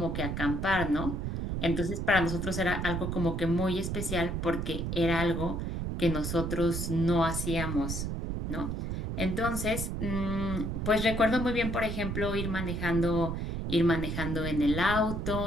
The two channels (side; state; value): right; noise; rumble, 3 dB below the sound